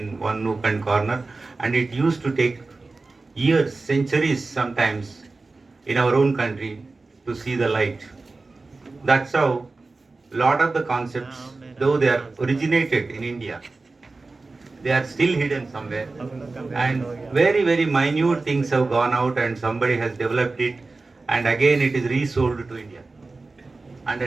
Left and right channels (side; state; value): left; quieter; 3.6 dB